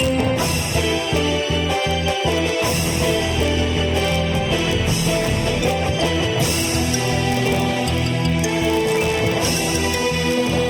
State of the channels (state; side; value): identical; both; correlation 1.00